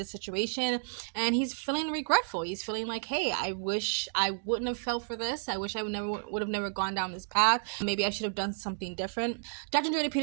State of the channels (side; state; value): left; silent; digital silence